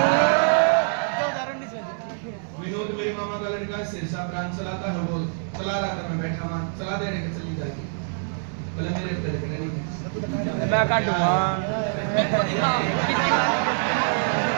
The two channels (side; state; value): left; silent; digital silence